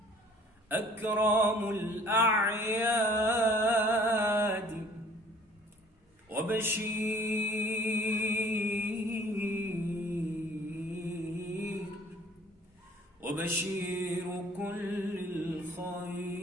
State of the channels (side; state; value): both; normal; correlation 0.53